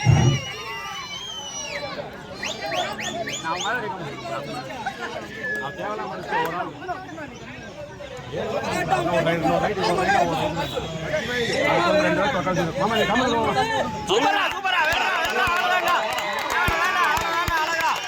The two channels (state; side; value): identical; both; correlation 1.00